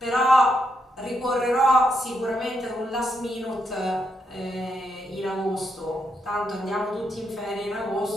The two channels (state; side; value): normal; both; correlation 0.80